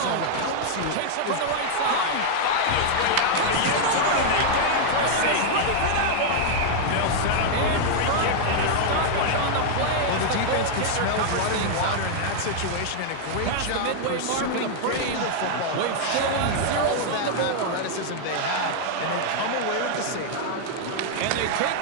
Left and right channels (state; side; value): different; both; correlation 0.00